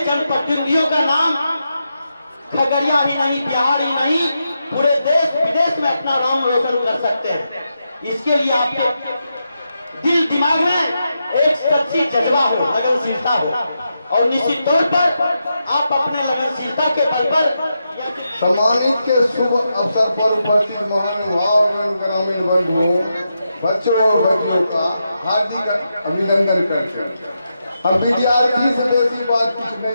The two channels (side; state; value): both; inverted; correlation -0.86